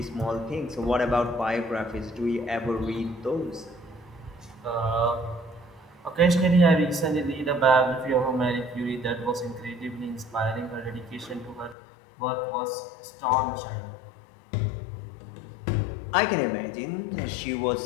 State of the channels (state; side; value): drops out; right; at 11.8 s